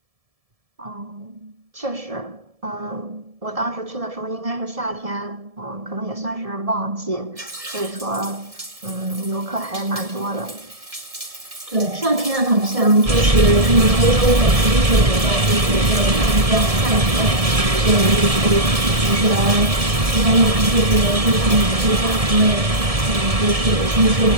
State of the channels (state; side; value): late; left; 1.7 ms